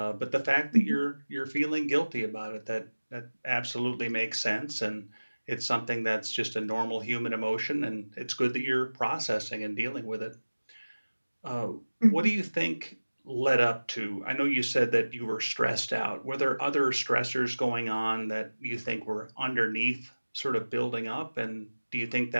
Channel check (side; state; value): both; inverted; correlation -1.00